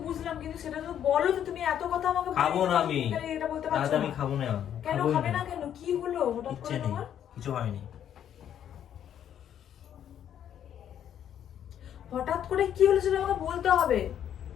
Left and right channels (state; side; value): quieter; right; 9.8 dB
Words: বুঝলাম, কিন্তু সেটা তো বলো যে তুমি এত কথা আমাকে খাবো না আমি, এটা বলতে রাতে পারছো আমি না। খাবো না। কেন খাবোই খাবে না, না? কেন কি হলো হঠাৎ ইচ্ছে করে নেই, তোমার? কিছু হয়নি। হঠাৎ করে কি হলো সেটা আমাকে বলতে হবে।